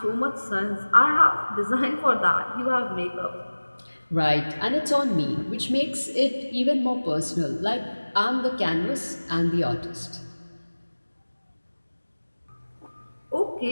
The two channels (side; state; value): both; inverted; correlation -1.00